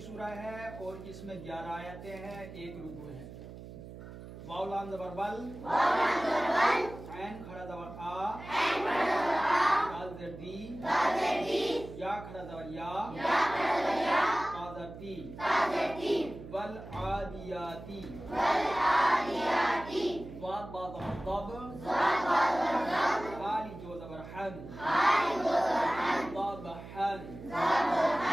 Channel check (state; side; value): noise; right; hum, 14 dB below the sound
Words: ہے اور اس میں 11 آیتیں ہیں، ایک رکوع ہے. واو لام زبر ول، عین کھڑا زبر آ، دال زیر دی، یا کھڑا زبر یا، تا زر تی، والعادیاتی، ضاد با زبر ضب، حالی جو زبر حن، ضب حن،